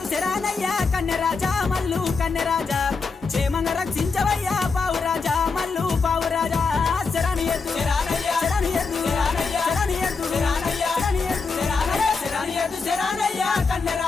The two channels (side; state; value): right; quieter; 4.6 dB